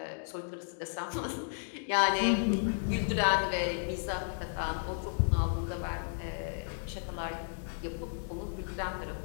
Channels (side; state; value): right; silent; digital silence